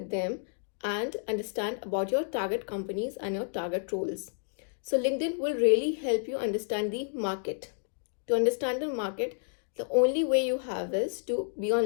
them and understand about your target companies and your target roles. So LinkedIn will really help you understand the market. To understand the market, The only way you have is to be on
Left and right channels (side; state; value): right; silent; digital silence